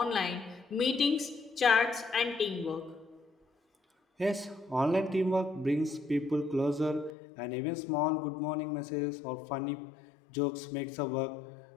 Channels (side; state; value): right; drops out; at 7.1 s